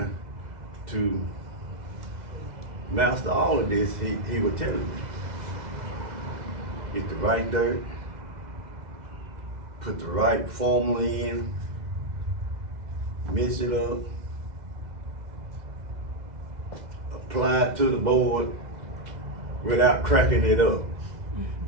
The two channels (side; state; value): left; late; 2.0 ms